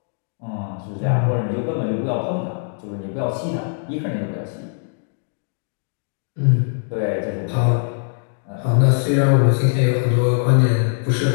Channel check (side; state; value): right; silent; 59 dB below the other